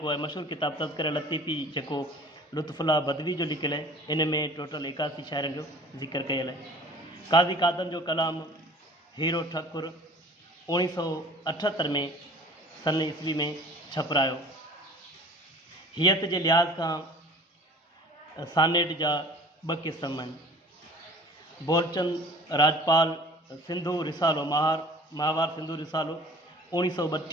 है मशहूर किताब तज़किरा लतीफ़ी जो लुत्फ़ुल्ला बदवी जो लिखियल है इन में टोटल 81 शाइरनि जो ज़िक्र कयल है। काज़ी कादम जो कलाम हीरो ठाकुर 1978 में सन ईस्वी में छपरायो। हियत के लिहाज का सानेट जा 2 क़िस्म आहिनि। बोलचंद राजपाल सिंधु रिसालो महावार सिंधु रिसालो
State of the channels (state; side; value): normal; both; correlation 0.46